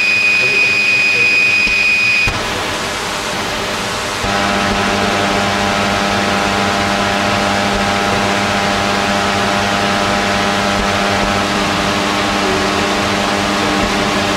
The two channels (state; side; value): identical; both; correlation 1.00